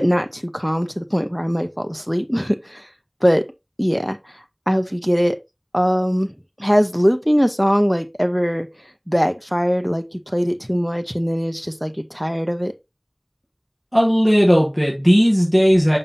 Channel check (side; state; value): both; identical; correlation 1.00